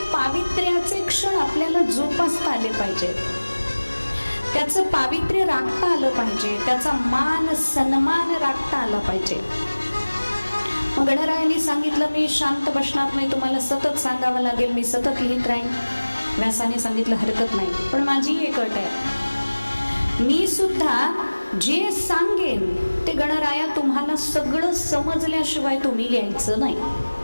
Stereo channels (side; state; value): both; inverted; correlation -1.00